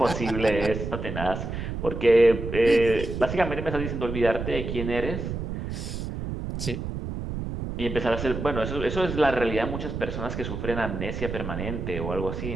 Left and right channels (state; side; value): noise; right; rumble, 5 dB below the sound